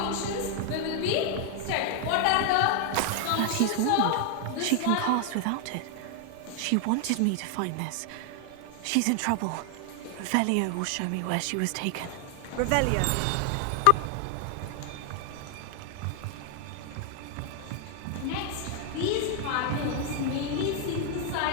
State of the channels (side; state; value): both; different; correlation 0.00